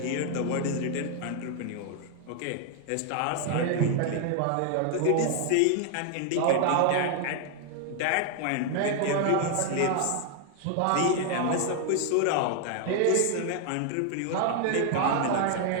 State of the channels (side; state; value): both; different; correlation 0.00